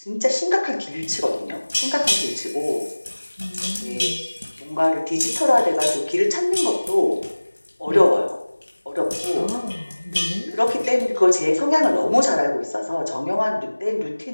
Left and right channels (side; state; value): both; inverted; correlation -1.00